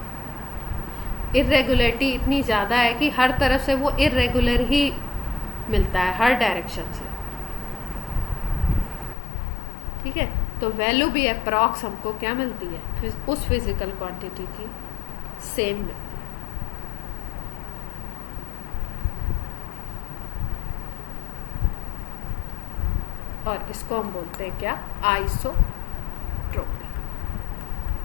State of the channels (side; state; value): right; drops out; at 9.2 s